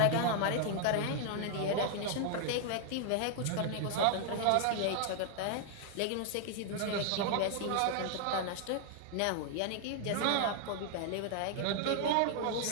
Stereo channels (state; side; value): different; both; correlation 0.00